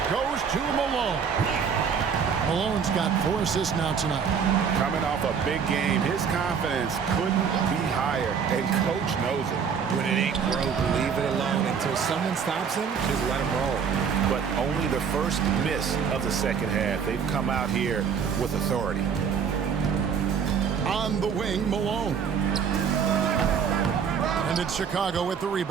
goes to Malone. Malone's got 4 assists now tonight. Coming off a big game, his confidence couldn't be higher, and Coach knows it. When it ain't broke, leave it alone. Until someone stops him, just let him roll. But only the first miss of the second half. They've come out here with authority. On the wing, Malone. And it's Chicago with the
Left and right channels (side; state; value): left; quieter; 6.7 dB